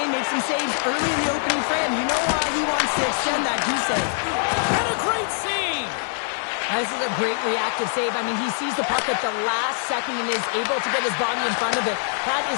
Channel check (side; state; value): right; silent; 63 dB below the other